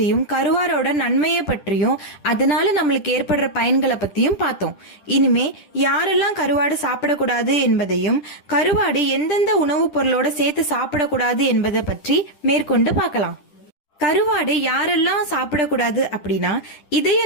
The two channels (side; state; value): right; late; 10 ms